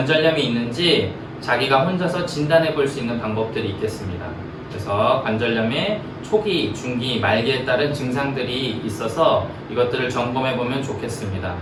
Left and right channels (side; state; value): both; identical; correlation 1.00